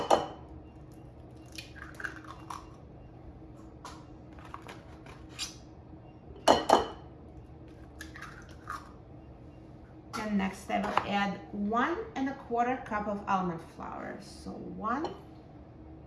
And next I will add 1 1/4 cup of almond flour. So 1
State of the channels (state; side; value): identical; both; correlation 1.00